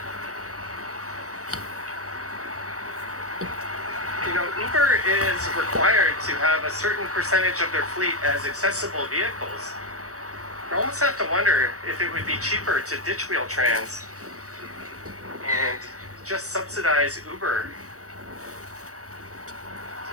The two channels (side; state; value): left; late; 0.65 ms